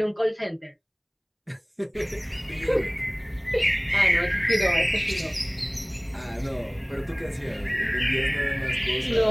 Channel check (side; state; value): both; identical; correlation 1.00